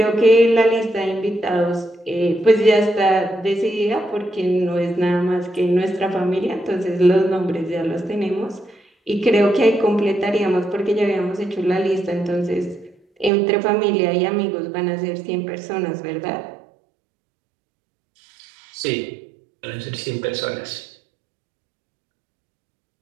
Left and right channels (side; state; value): left; drops out; at 13.3 s